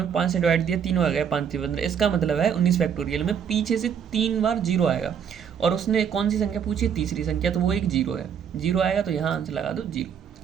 5 से डिवाइड दिया, 3 बार गया, 5 से 15। इसका मतलब है 19 फैक्टोरियल में पीछे से 3 बार जीरो आएगा, और उसने कौन सी संख्या पूछी, तीसरी संख्या, तो वो एक जीरो है। जीरो आएगा तो यहाँ आंसर लगा दो जीरो।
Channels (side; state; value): left; quieter; 7.9 dB